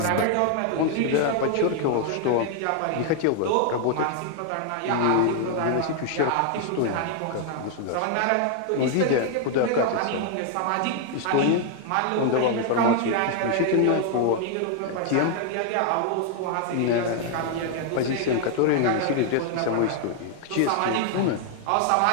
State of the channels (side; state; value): both; different; correlation 0.00